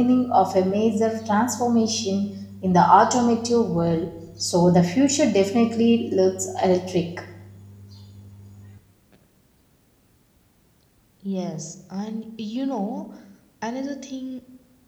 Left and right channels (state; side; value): identical; both; correlation 1.00